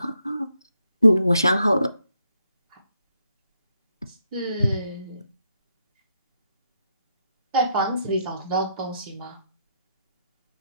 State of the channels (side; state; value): both; inverted; correlation -0.78